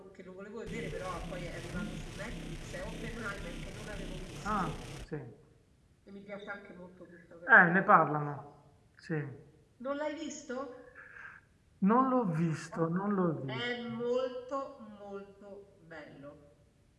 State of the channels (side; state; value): both; identical; correlation 1.00